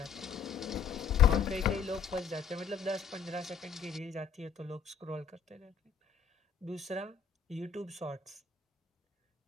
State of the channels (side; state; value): right; quieter; 6.7 dB